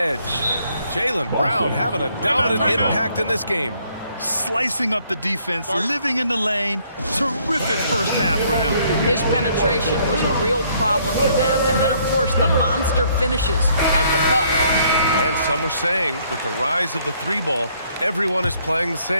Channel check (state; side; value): inverted; both; correlation -0.66